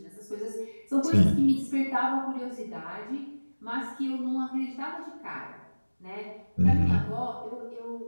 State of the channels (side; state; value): both; inverted; correlation -1.00